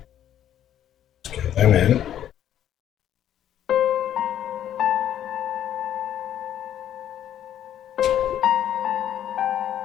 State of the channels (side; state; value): right; quieter; 10.8 dB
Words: get them in.